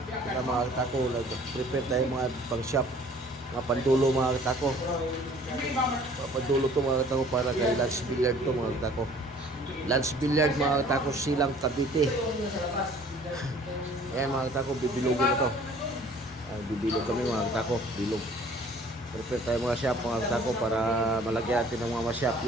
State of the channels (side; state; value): both; normal; correlation 0.53